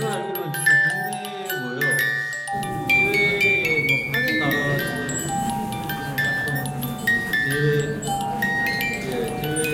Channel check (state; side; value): identical; both; correlation 1.00